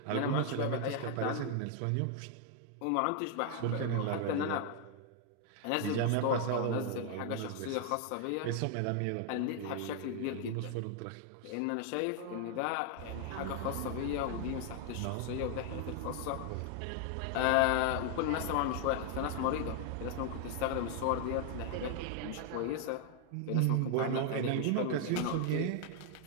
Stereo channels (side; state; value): both; different; correlation 0.00